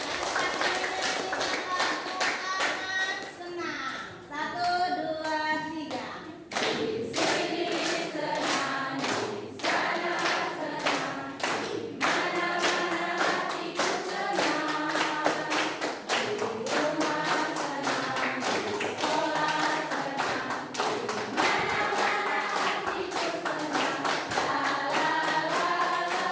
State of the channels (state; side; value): identical; both; correlation 1.00